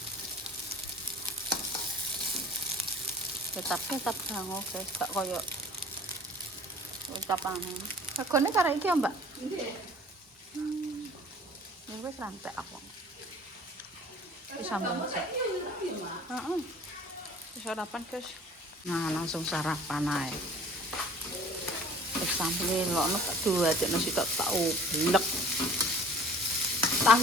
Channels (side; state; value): both; normal; correlation 0.48